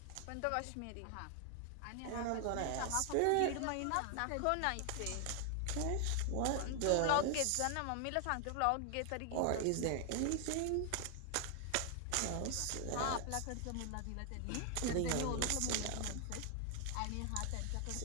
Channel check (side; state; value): both; different; correlation 0.00